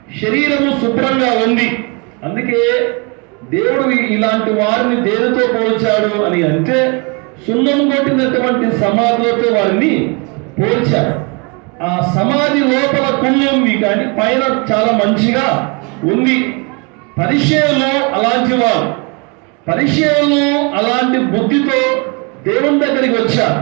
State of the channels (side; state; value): left; quieter; 32.0 dB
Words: శరీరము శుభ్రంగా ఉంది. అందుకే దేవుడు ఇలాంటి వారిని దేనితో పోల్చాడు అని అంటే సున్నం కొట్టినటువంటి సమాధులతో వారిని పోల్చాడు. ఆ సమాధి లోపల కుళ్ళి ఉంది, కానీ పైన చాలా మంచిగా ఉంది. పరిశేయులు అలాంటి వారు. పరిశేయులు అలాంటి బుద్ధితో దేవుని దగ్గరికి వచ్చారు.